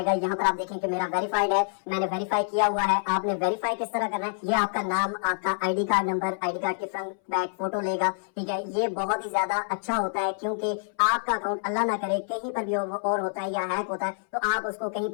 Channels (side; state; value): right; silent; 60 dB below the other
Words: यहाँ पर आप देखें कि मेरा वेरीफाइड है, मैंने वेरीफाई किया हुआ है। आपने वेरीफाई किस तरह करना है, ये आपका नाम, आपका ID card number, ID card की फ्रंट बैक फोटो लेगा, ठीक है। ये बहुत ही ज्यादा अच्छा होता है क्योंकि आपका अकाउंट अल्लाह ना करे कहीं पर भी और होता है या हैक होता है तो आप उसको कहीं